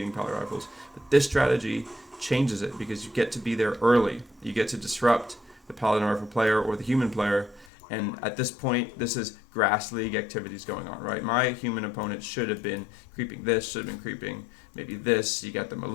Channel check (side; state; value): right; drops out; at 7.7 s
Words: Paladin Rifles. But this strategy changes it because you get to be there early. You get to disrupt the Paladin Rifle player or the human player. And at this point, this is Grass League activities going on, right? My human opponent should have been creeping this, should have been creeping maybe this. You got the